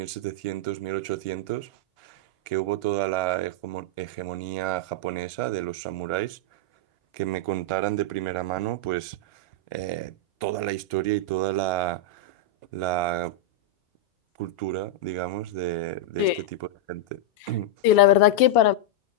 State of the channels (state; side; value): late; right; 1.4 ms